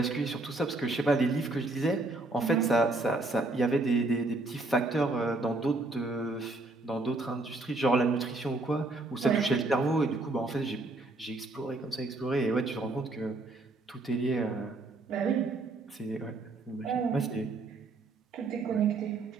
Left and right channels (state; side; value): quieter; left; 3.1 dB